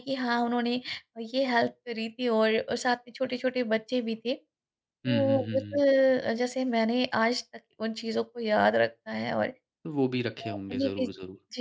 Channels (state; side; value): identical; both; correlation 1.00